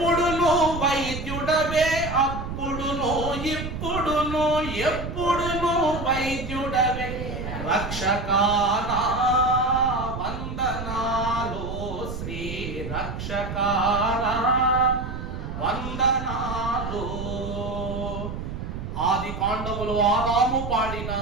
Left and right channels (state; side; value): noise; right; rumble, 7 dB below the sound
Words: వైద్యుడవే, అప్పుడును ఇప్పుడును ఎప్పుడును వైద్యుడవే, రక్షకానా వందనాలు, శ్రీ రక్షకానా వందనాలు. ఆది కాండములు ఆదాము పాడిన